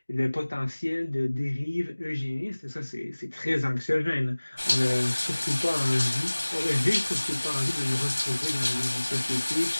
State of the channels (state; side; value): inverted; both; correlation -1.00